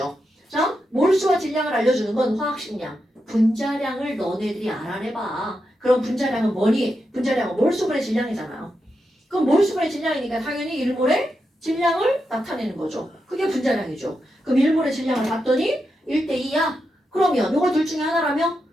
자, 몰수와 질량을 알려주는 건 화학식량. 분자량을 너네들이 알아내봐. 그럼 분자량은 뭐니? 분자량은 몰수분의 질량이잖아요. 그럼 몰수분의 질량이니까 당연히 1몰의 질량을 나타내는 거죠. 그게 분자량이죠. 그럼 1몰의 질량을 봤더니 1대2야. 그러면 이거 둘 중에 하나라면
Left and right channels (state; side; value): normal; both; correlation 0.86